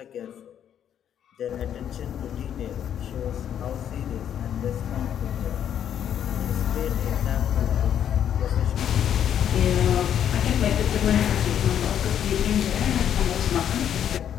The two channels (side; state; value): right; quieter; 9.5 dB